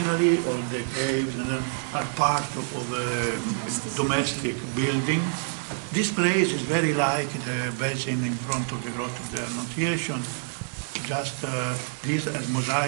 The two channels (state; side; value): silent; left; digital silence